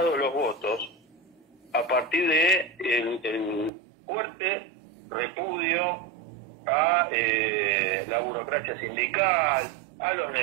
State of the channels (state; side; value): drops out; left; at 3.7 s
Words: los votos a partir de el fuerte repudio a la burocracia sindical, a los